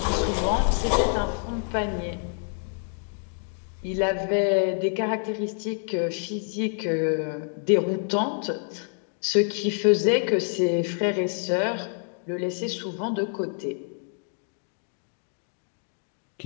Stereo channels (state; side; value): silent; right; 60 dB below the other